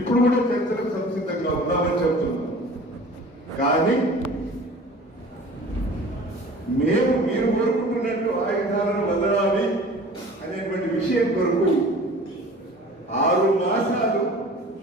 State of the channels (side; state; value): both; normal; correlation 0.44